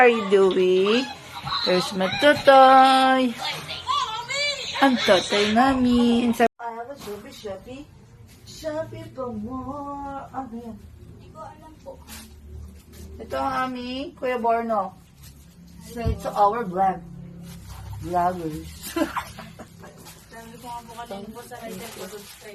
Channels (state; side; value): identical; both; correlation 1.00